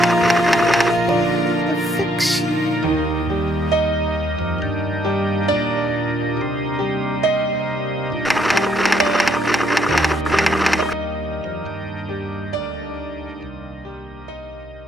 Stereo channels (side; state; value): both; normal; correlation 0.70